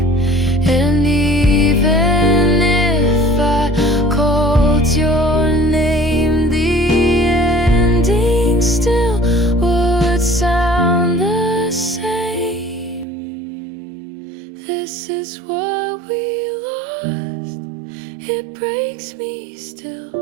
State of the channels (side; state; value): left; drops out; at 13.1 s